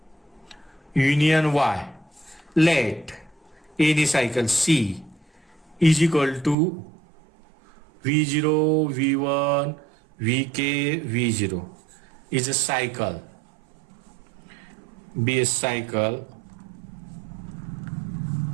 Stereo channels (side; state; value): left; drops out; at 6.6 s